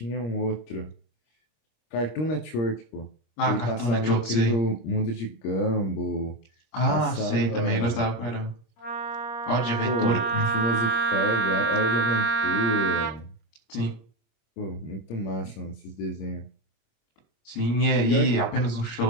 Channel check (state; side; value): late; right; 26 ms